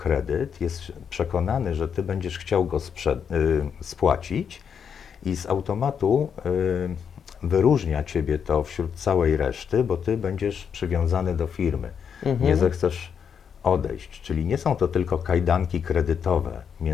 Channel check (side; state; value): right; quieter; 7.3 dB